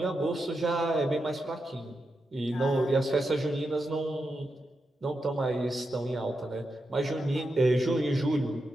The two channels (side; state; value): both; normal; correlation 0.87